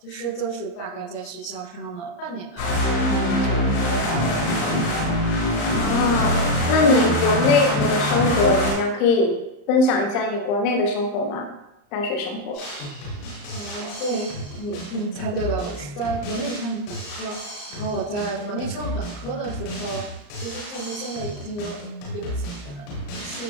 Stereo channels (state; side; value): late; right; 35 ms